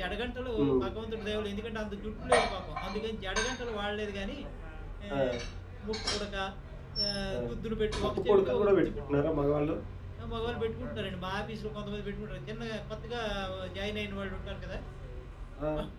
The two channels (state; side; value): identical; both; correlation 1.00